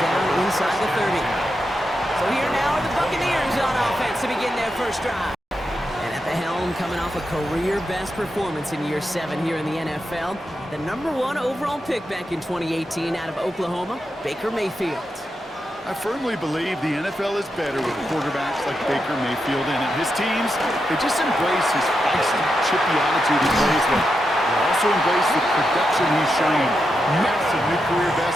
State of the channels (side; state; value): both; normal; correlation 0.86